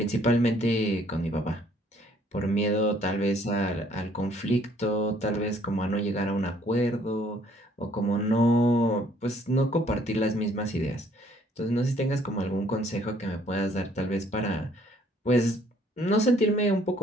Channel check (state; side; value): normal; both; correlation 0.62